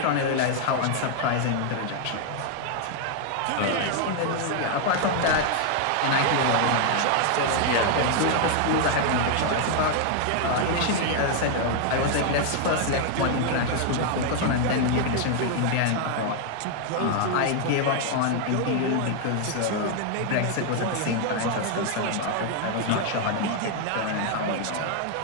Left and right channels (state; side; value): different; both; correlation 0.00